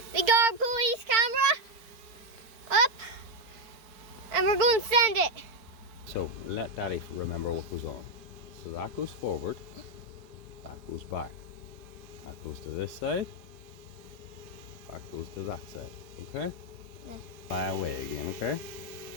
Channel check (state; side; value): late; left; 4.4 ms